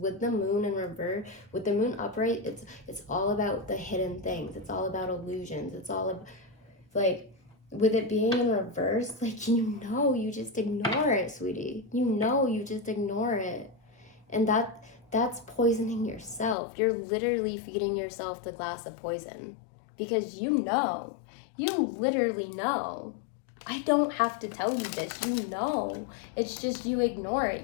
the moon in reverse, with the moon upright, it's all about the hidden things. It's all about illusions. It's all of, like, with it being in reverse, like, you just ignore it, sweetie. You just ignore it. And that's poisoning yourself. You're literally feeding yourself the glass of poison, because you literally know. I don't have to tell you this. It's just you ignore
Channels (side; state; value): right; drops out; at 16.6 s